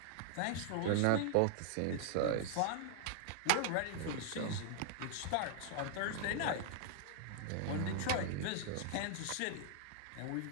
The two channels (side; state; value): both; different; correlation -0.01